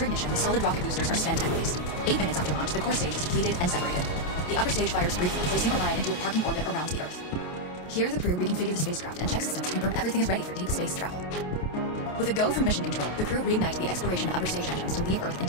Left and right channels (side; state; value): right; late; 28 ms